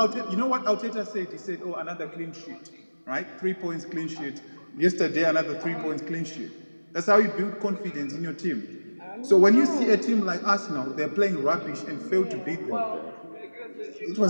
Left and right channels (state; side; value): inverted; both; correlation -1.00